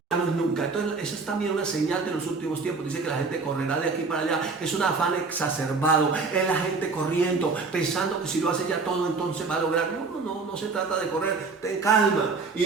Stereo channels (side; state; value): left; quieter; 4.3 dB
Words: ya no es nunca. Entonces esa es también una señal de los últimos tiempos. Dice que la gente correrá de aquí para allá. Es un afán exacerbado, es la gente corriendo, pensando que si lo hace ya todo entonces va a lograr. No se trata de correr, ten calma. Y